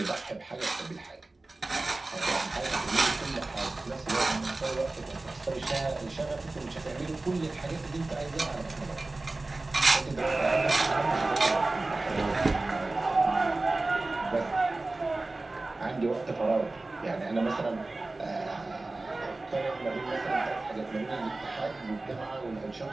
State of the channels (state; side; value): quieter; left; 3.1 dB